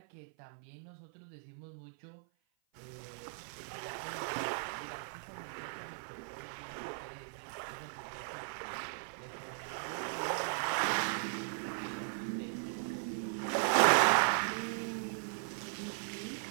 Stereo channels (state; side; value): silent; left; 53 dB below the other